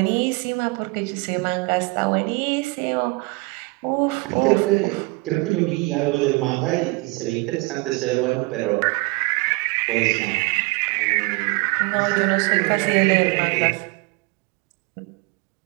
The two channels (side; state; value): left; quieter; 26.3 dB